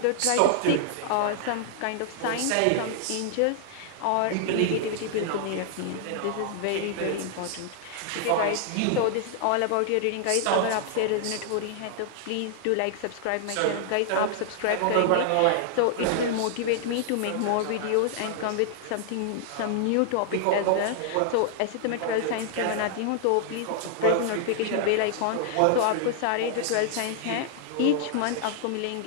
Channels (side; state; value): both; different; correlation -0.01